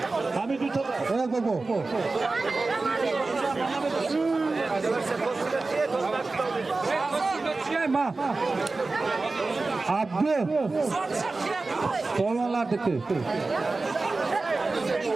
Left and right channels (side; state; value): left; quieter; 3.6 dB